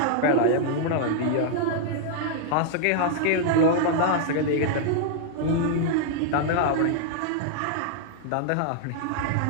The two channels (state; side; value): different; both; correlation -0.01